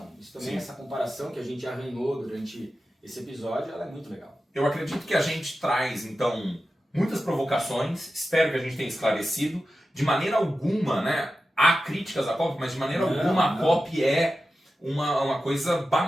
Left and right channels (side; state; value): both; normal; correlation 0.92